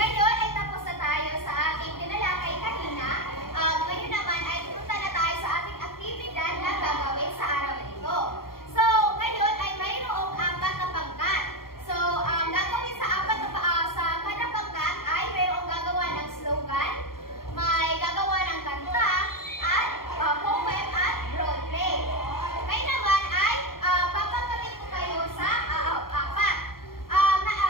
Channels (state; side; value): late; right; 0.93 ms